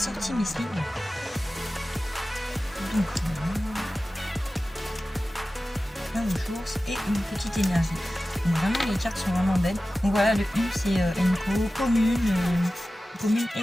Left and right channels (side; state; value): both; normal; correlation 0.95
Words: mes slips. Donc plein de ressources et une petite énergie. Donc vraiment les cartes sont vraiment belles. Donc voilà, le U c'est Enko, commune et